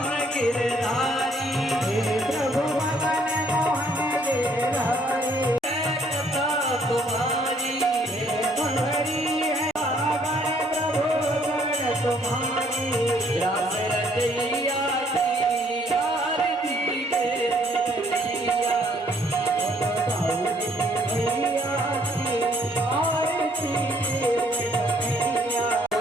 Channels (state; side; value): normal; both; correlation 0.65